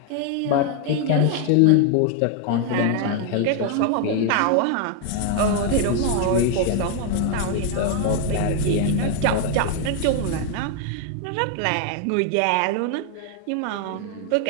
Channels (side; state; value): both; different; correlation 0.00